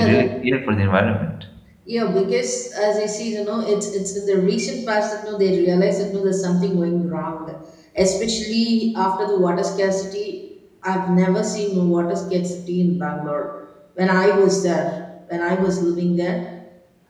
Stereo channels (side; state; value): both; identical; correlation 1.00